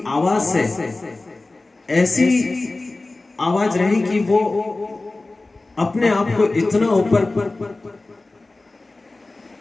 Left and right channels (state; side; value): quieter; right; 3.2 dB